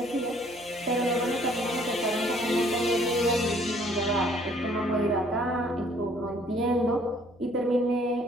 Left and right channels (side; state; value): left; noise; hum, 26 dB below the sound